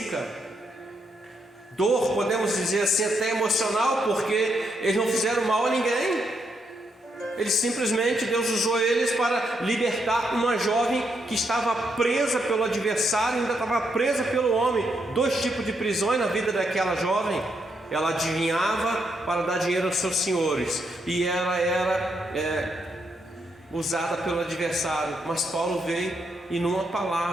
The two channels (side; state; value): both; normal; correlation 0.79